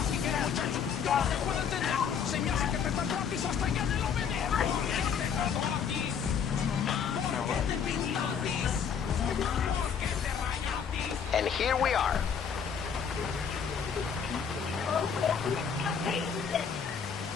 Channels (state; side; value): quieter; right; 7.1 dB